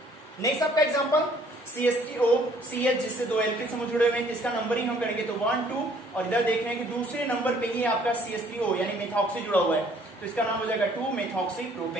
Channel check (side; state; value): both; normal; correlation 0.60